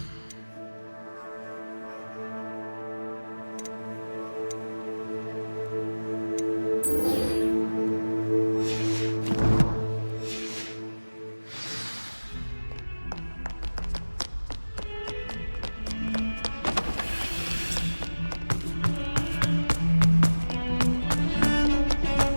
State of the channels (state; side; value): inverted; both; correlation -1.00